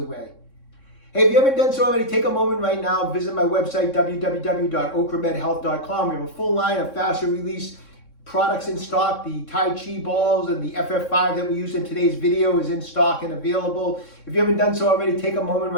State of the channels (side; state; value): right; late; 3.6 ms